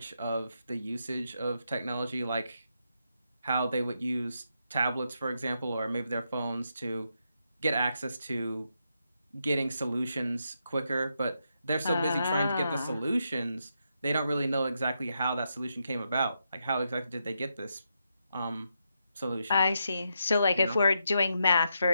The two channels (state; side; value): inverted; both; correlation -0.82